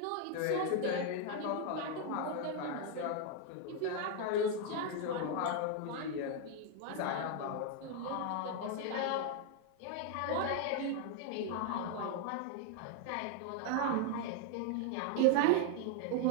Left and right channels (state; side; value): different; both; correlation 0.00